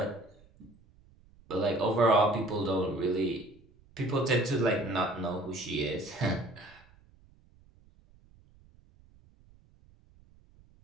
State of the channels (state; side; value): noise; right; rumble, 28 dB below the sound